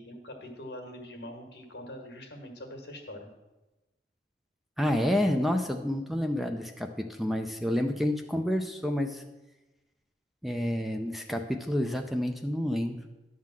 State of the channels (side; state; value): both; normal; correlation 0.89